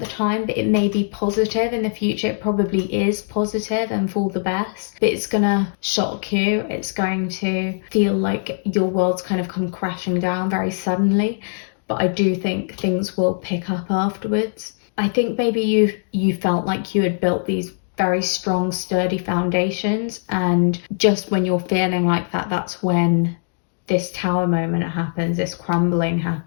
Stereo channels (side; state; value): right; silent; digital silence